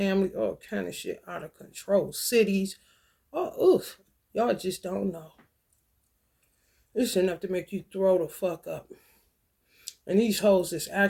all kind of shit out of control. Cities, oh, oof, y'all just don't know. It's enough to make you throw the fuck up. And these hoes is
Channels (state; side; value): identical; both; correlation 1.00